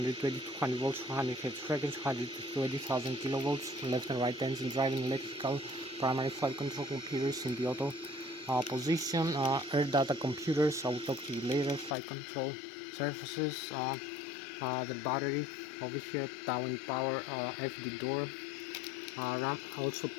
200 volts, 100 Hz frequency, 120,000 kilovolts, left and right engine driving, electrical, primary flight control computers in the auto position, air data computers. I will talk to you later. Flight control surfaces, the battery over here, down power, FD door, RAM, also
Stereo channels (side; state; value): right; drops out; at 12.0 s